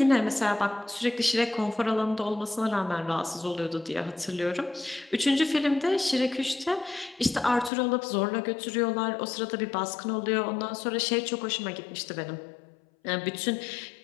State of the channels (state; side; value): drops out; right; at 7.7 s